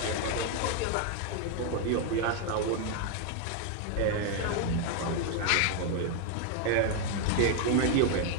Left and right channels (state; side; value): different; both; correlation 0.00